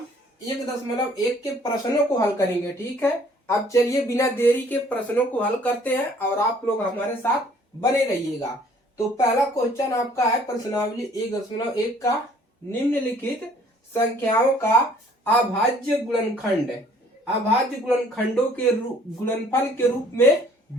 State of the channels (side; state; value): both; normal; correlation 0.58